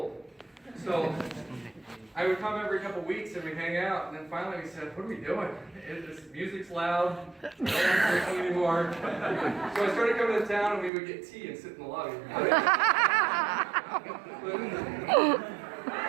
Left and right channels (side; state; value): left; drops out; at 10.9 s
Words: So I would come every couple weeks and we'd hang out, and then finally we said, what are we doing? This music's loud, we're not drinking anymore. So I started coming to town and we would get tea and sit in the lobby. But